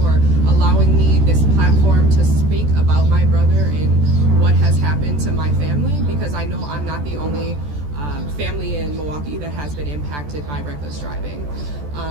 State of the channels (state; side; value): late; left; 14 ms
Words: allowing me this platform to speak about my brother and what has happened to my family, because I know I'm not the only family in Milwaukee that has been impacted by reckless driving.